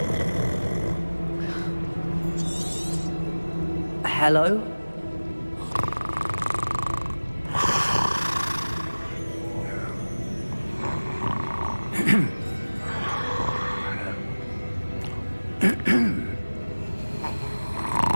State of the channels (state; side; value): inverted; both; correlation -1.00